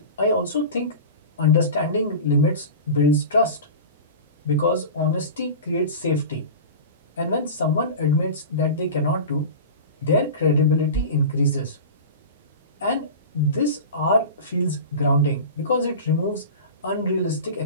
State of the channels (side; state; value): both; inverted; correlation -0.31